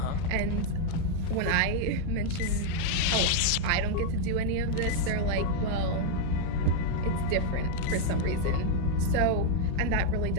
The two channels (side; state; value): both; different; correlation 0.00